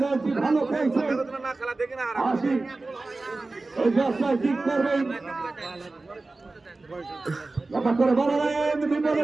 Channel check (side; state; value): left; quieter; 3.4 dB